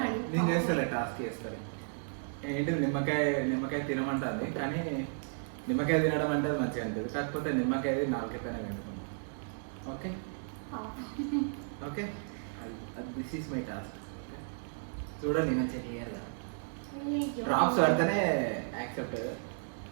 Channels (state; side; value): silent; left; digital silence